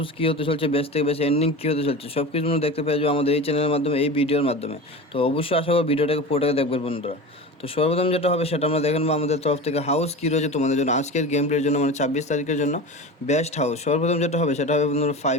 কী হতে চলছে, বেস্ট থেকে বেস্ট এন্ডিং কী হতে চলছে সব কিছু দেখতে পেয়ে যাবো আমাদের এই চ্যানেলের মাধ্যমে, এই ভিডিওর মাধ্যমে। তো অবশ্যই আশা করি ভিডিওটাকে পুরোটাকে দেখবেন বন্ধুরা। তো সর্বপ্রথম যেটা হবে সেটা আমরা দেখে নেবো আমাদের তরফ থেকে হাউস কী রয়েছে তোমাদের জন্য আজকের গেম প্লের জন্য, মানে 26 তারিখের জন্য বেস্ট হাউস। সর্বপ্রথম যেটা হবে সেটা হবে বন্ধুরা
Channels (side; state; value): both; normal; correlation 0.30